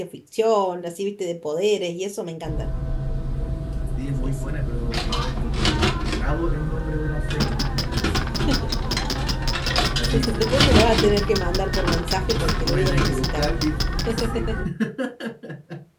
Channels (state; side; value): identical; both; correlation 1.00